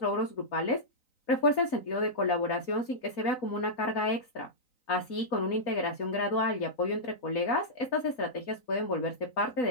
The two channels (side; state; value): right; late; 3.9 ms